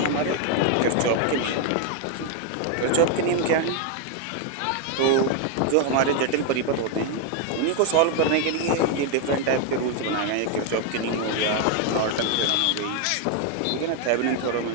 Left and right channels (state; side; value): different; both; correlation 0.01